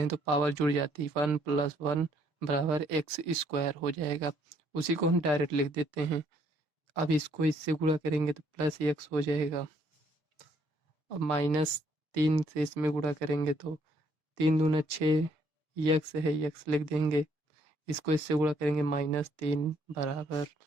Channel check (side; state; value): left; late; 6.2 ms